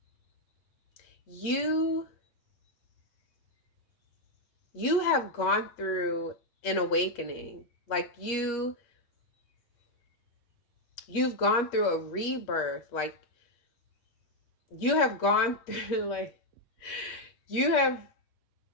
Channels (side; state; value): right; late; 8.4 ms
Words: You have gone through an awakening. Like you've gone through a rebirth. Like you have gone through, like you have